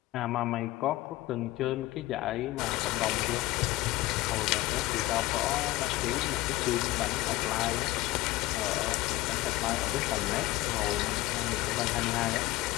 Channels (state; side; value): quieter; right; 17.9 dB